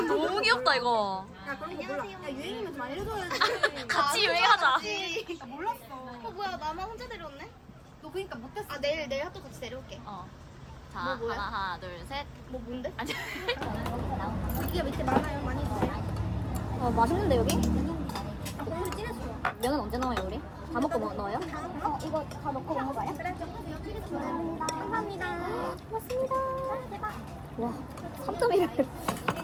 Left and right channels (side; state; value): both; identical; correlation 1.00